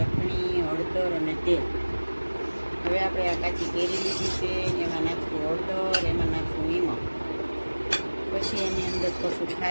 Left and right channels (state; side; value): inverted; both; correlation -1.00